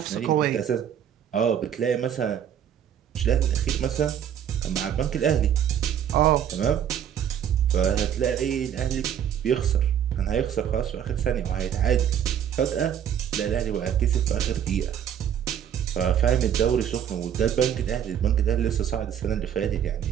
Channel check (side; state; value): left; quieter; 9.3 dB